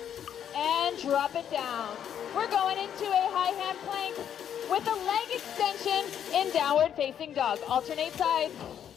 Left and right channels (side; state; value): right; quieter; 9.2 dB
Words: and drop it down. We're going into a high hand plank with a leg extension in downward facing dog. Alternate sides.